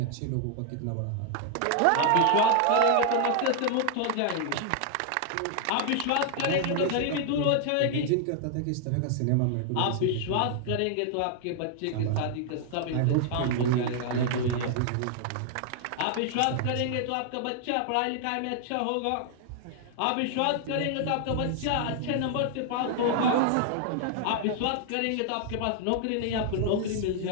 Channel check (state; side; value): different; both; correlation 0.00